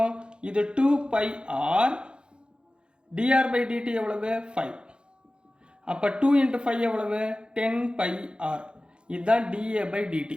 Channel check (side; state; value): left; late; 0.053 ms